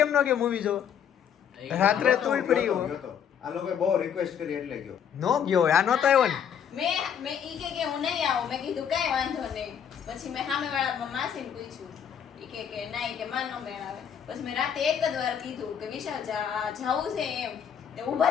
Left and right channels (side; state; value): right; quieter; 8.3 dB